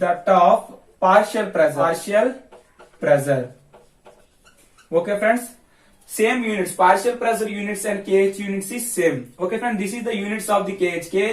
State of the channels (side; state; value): both; identical; correlation 1.00